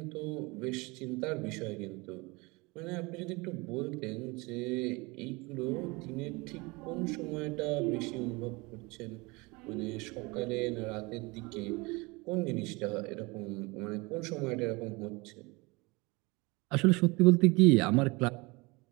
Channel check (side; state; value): left; quieter; 25.4 dB